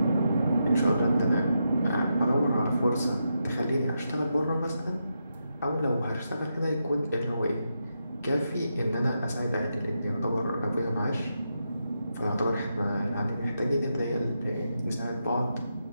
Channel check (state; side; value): inverted; both; correlation -0.85